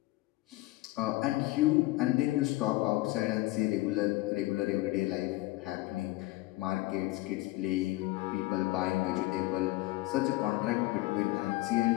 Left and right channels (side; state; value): right; quieter; 19.3 dB